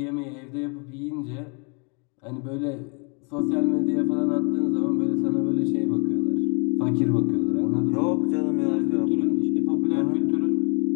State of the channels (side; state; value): right; quieter; 35.1 dB